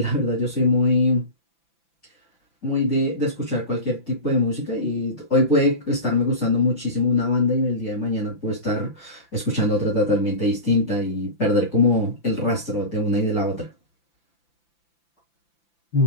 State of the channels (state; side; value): late; right; 5.9 ms